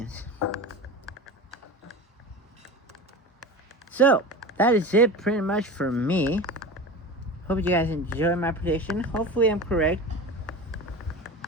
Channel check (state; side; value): normal; both; correlation 0.31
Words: So, that is it pretty much for me. Hope you guys enjoy my prediction. Hopefully I'm correct.